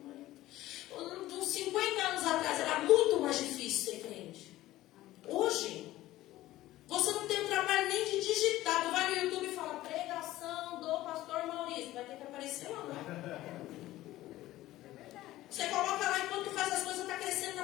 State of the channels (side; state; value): right; quieter; 15.8 dB